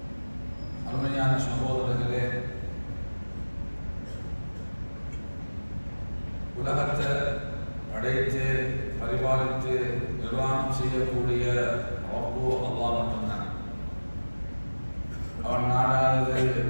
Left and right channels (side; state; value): both; inverted; correlation -1.00